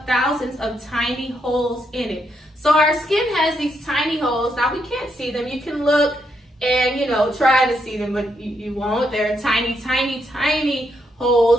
thousands of tiny holes in it. So our skin has these tiny holes. Now we can't see them. You can look and, try to see them, but you won't. They're tiny, tiny, tiny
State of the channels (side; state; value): both; normal; correlation 0.79